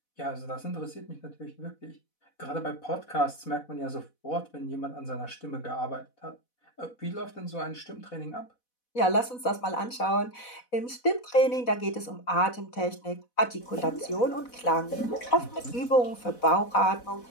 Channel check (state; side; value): late; right; 4.1 ms